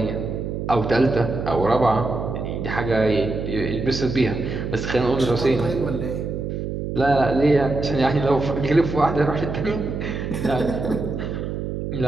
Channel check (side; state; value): right; noise; hum, 4 dB below the sound